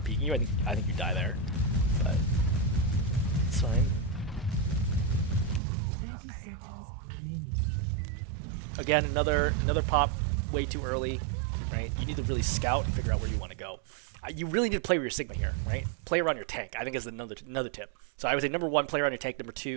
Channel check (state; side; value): drops out; left; at 5.6 s